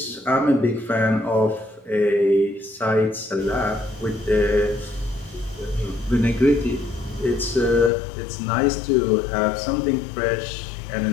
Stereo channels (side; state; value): right; drops out; at 7.9 s